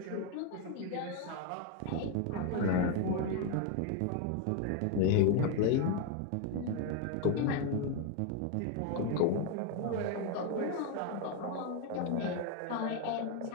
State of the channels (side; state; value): both; different; correlation 0.01